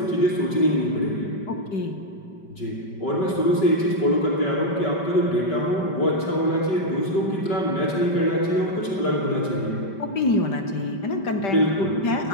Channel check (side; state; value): right; late; 5.1 ms